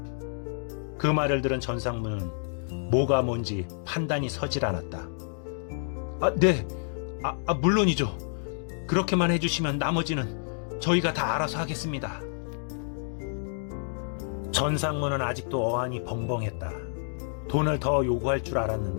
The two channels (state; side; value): silent; right; digital silence